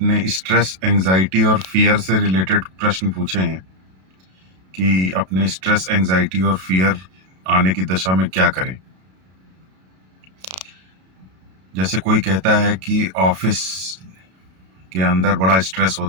स्ट्रेस, एंजाइटी और फियर से रिलेटेड प्रश्न पूछे हैं कि अपने स्ट्रेस, एंजाइटी और फियर आने की दशा में क्या करें। जैसे कोई कहता है कि ऑफिस के अंदर बड़ा स्ट्रेस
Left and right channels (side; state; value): left; late; 32 ms